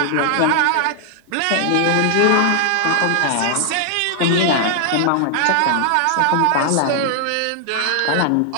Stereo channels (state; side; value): different; both; correlation 0.00